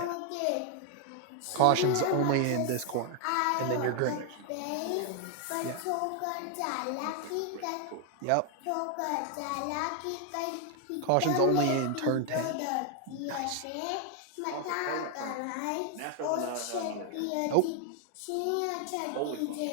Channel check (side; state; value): both; different; correlation 0.00